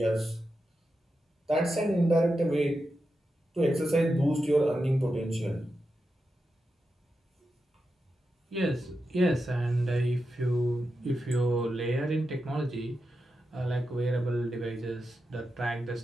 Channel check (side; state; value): both; normal; correlation 0.89